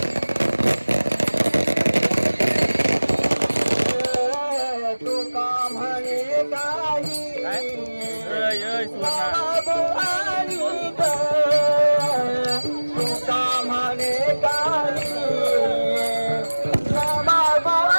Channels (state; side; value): inverted; both; correlation -1.00